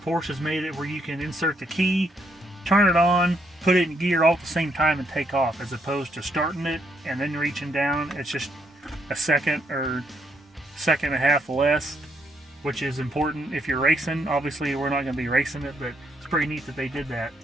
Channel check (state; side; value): normal; both; correlation 0.74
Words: Porsche has made it where you can insert the key, turn it on, put it in gear all at the same time and take off, as opposed to starting it and then reaching down. It's just a second or second and a half less, which is important if you're racing. Obviously we're not going to be racing it, but it's pretty neat that they did that.